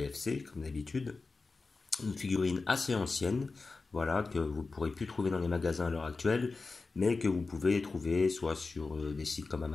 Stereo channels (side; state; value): right; quieter; 3.9 dB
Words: comme d'habitude. Une figurine assez ancienne, voilà, que vous ne pourrez plus trouver dans les magasins à l'heure actuelle, mais que vous pouvez trouver soit sur des sites comme